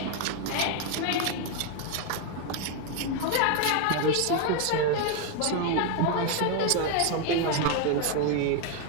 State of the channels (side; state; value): both; different; correlation 0.01